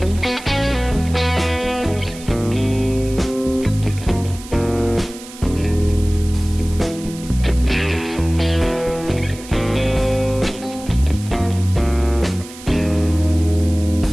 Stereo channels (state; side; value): noise; right; hiss, 17 dB below the sound